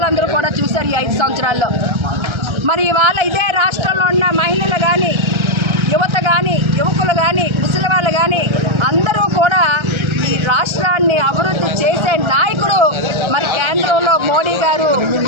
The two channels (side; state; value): left; late; 1.3 ms